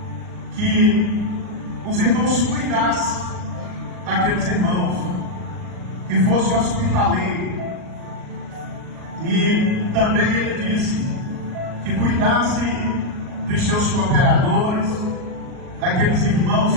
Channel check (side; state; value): left; late; 38 ms